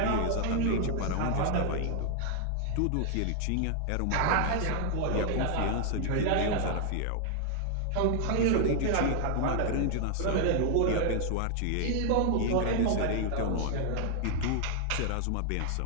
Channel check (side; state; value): both; different; correlation 0.00